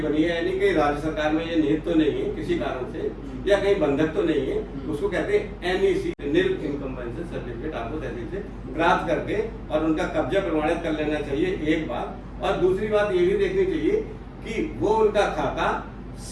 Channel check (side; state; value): both; identical; correlation 1.00